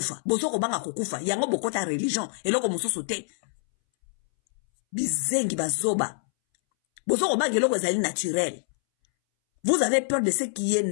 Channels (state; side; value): silent; right; 61 dB below the other